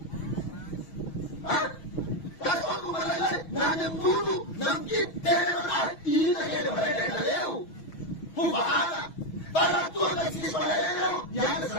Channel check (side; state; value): right; late; 6.3 ms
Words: Nanya mulu, nanti teror ini ada pada leu. Pembahasan, pada tuan kasih pada leu yang